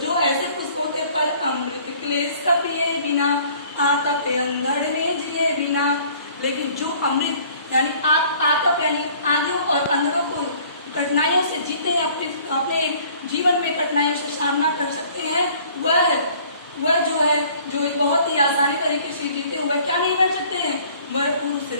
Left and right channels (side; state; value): both; inverted; correlation -0.54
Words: जो ऐसे पुष्प होते हैं, पर अमृत क्लेश का पिए बिना, आतप अंधड़ में जिए बिना। लेकिन जो अमृत यानी आतप यानी आंधियों और अंधड़ों को, कठिनाइयों से जीते हैं, अपने जीवन में कठिनाइयों से सामना कर सकते हैं, वह जो है, जो बहुत ही आसानी तरीके से जीते हैं, वह क्या नहीं बन सकते हैं? वह पुरुष